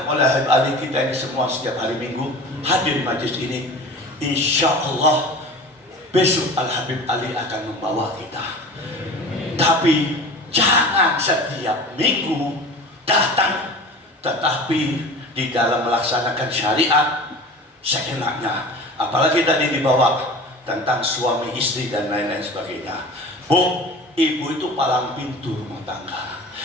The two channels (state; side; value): normal; both; correlation 0.37